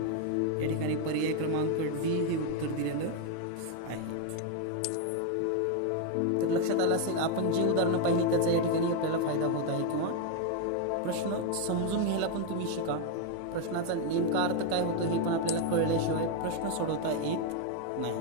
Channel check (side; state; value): both; different; correlation 0.01